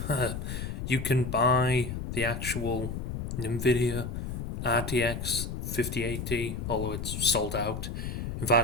You can buy the actual Nvidia RTX 5080, although it's sold out. In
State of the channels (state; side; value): noise; left; rumble, 5 dB below the sound